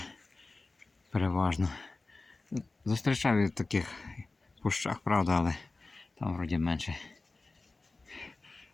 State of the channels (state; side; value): quieter; right; 3.4 dB